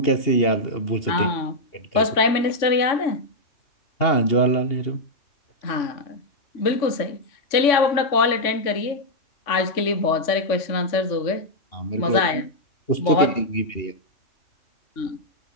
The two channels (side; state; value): right; late; 3.5 ms